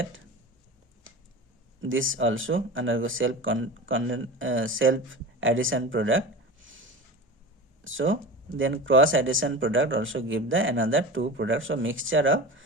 This also undergo self addition product. So then cross addition product also give the another two products. So mixture of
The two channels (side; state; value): both; normal; correlation 0.30